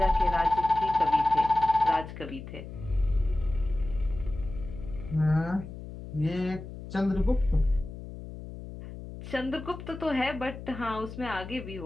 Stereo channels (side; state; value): left; noise; hum, 12 dB below the sound